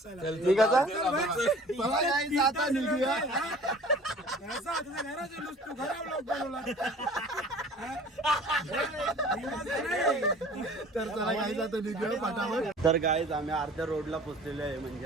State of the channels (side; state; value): both; normal; correlation 0.47